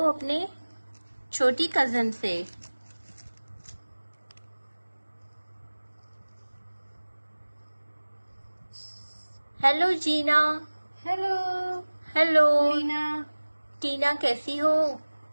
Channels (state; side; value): inverted; both; correlation -1.00